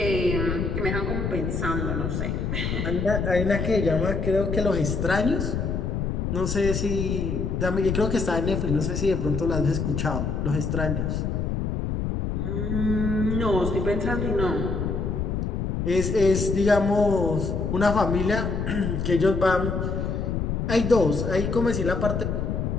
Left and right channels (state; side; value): noise; left; rumble, 1 dB below the sound